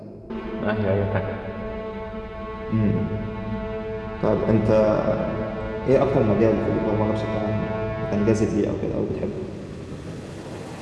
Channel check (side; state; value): both; identical; correlation 1.00